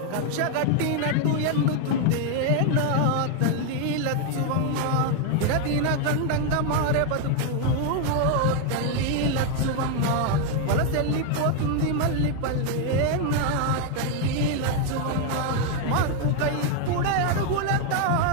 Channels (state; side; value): different; both; correlation 0.00